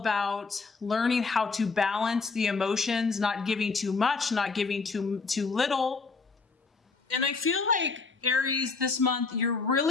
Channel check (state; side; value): quieter; right; 4.4 dB